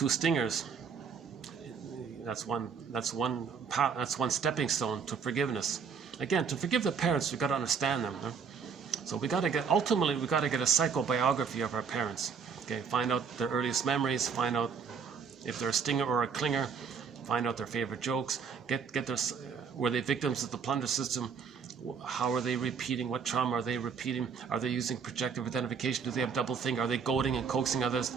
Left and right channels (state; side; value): quieter; left; 6.1 dB